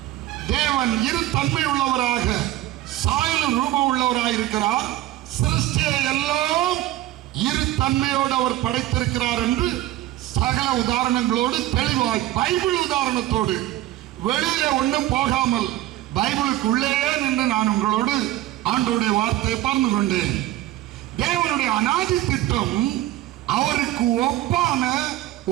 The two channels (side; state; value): left; quieter; 14.9 dB